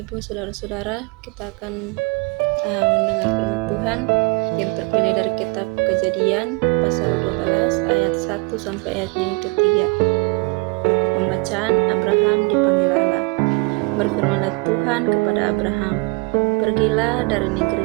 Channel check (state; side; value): quieter; left; 28.2 dB